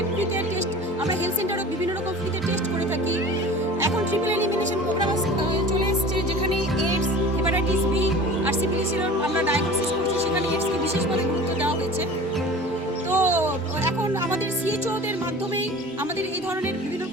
ফ্রিতে টেস্ট, আমরা হেলথ সেন্টারে বিভিন্ন রকম ফ্রিতে টেস্ট করে থাকি। এখন ট্রিপল এলিমিনেশন প্রোগ্রাম চলে এসছে, যেখানে এইডস, হেপাটাইটিস বি আর সিফিলিসের আমরা ডায়াগনোসিস করছি, সেখানে এইডসকে বিশেষভাবে গুরুত্ব দেওয়া হয়েছে। তো এখন আমাদের CHOদের মাধ্যমেই আমাদের এই ধরনের বিভিন্ন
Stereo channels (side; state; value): both; normal; correlation 0.39